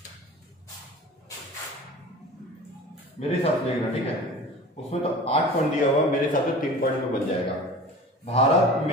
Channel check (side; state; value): both; normal; correlation 0.38